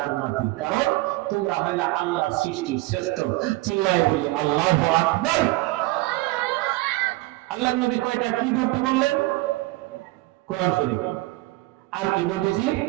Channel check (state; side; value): quieter; left; 20.6 dB